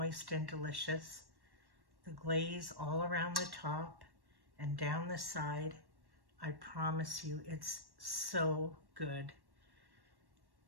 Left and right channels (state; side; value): late; left; 1.1 ms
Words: and delicious. The glaze all around the top and down the side. I promise you, it's so good.